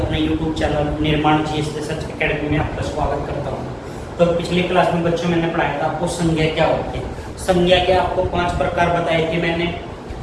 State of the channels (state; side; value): identical; both; correlation 1.00